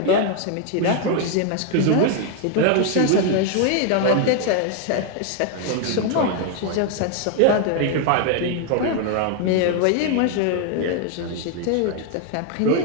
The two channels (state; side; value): different; both; correlation 0.01